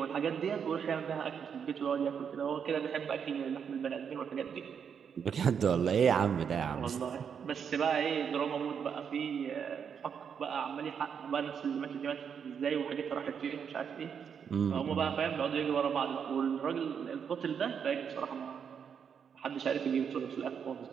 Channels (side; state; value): left; quieter; 7.2 dB